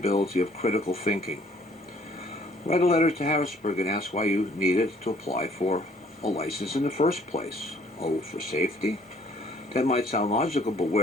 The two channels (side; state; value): both; normal; correlation 0.60